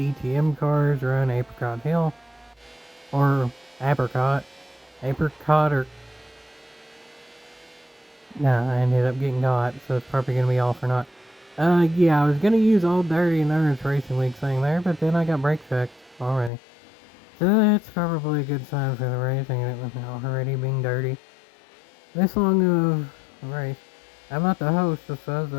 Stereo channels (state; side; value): drops out; right; at 16.5 s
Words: cars around Apricot Hill, or Apricot. Apricot or... Nah, I ended up getting got, so it's probably gonna be off or not. Yeah, I was gonna use Old Dirty Endurance Racing League thing there, but then I got brake checked already. So that's probably a good sign for the racing, and it was already being dirty. This long of a race. I'm not the host, if I was